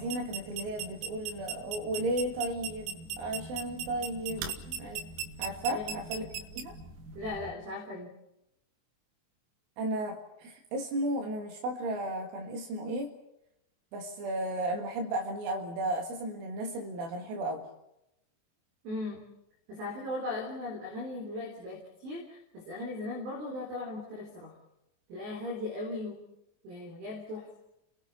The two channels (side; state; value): left; late; 24 ms